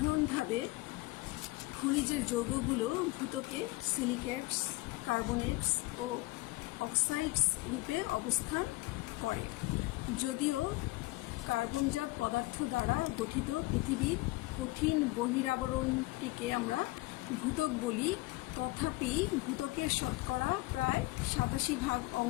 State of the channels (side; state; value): right; quieter; 21.5 dB